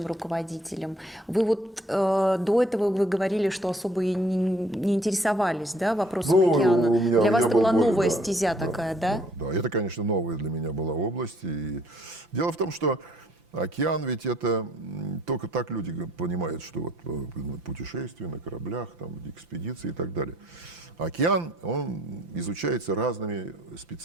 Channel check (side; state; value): both; normal; correlation 0.61